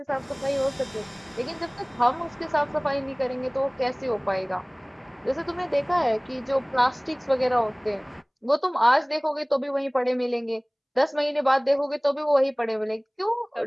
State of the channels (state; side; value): identical; both; correlation 1.00